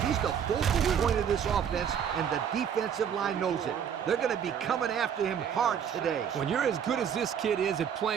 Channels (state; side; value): quieter; left; 8.1 dB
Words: He's the focal point of this offense, and the defensive line knows it. They're going to be coming after him hard today. When you're as good as this kid is at